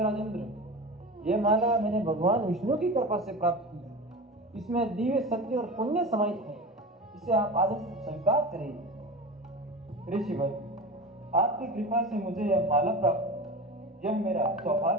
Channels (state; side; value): normal; both; correlation 0.29